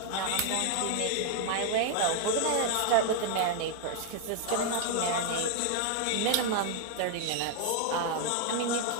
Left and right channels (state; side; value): different; both; correlation 0.00